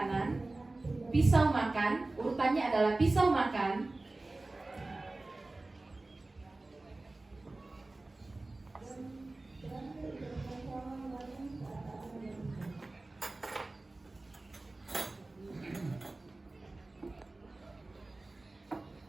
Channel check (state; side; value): quieter; left; 3.0 dB